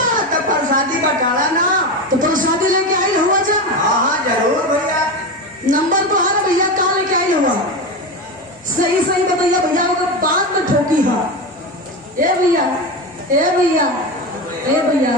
तो प्रसादी बटाला ना, तो प्रसादी लेके आई हुआ जा। हाँ जरूर भैया। नंबर तो हर भैया कहाँ लेके आई हुआ, सही सही बताइए भैया। अगर बाद में ठोकी है ए भैया, ए भैया, ए भैया,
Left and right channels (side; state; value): both; normal; correlation 0.20